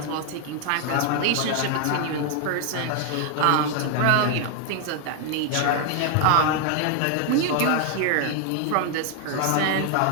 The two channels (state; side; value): different; both; correlation 0.00